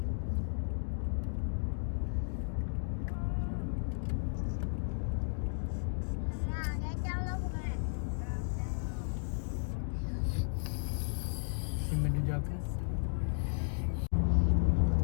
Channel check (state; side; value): silent; right; digital silence